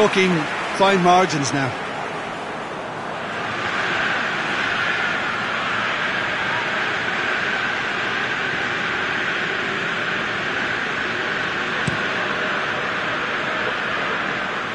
fine margins now.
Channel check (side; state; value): both; identical; correlation 1.00